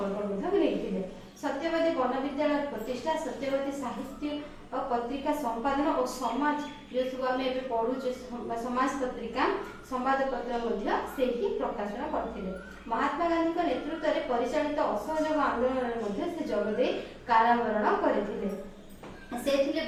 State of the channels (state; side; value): identical; both; correlation 1.00